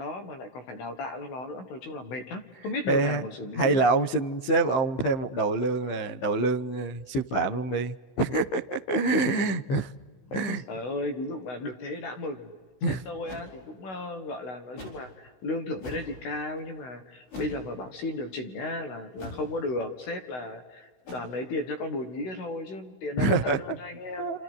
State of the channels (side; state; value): right; late; 15 ms